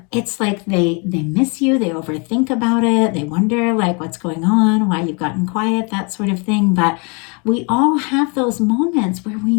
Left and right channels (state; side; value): quieter; right; 33.0 dB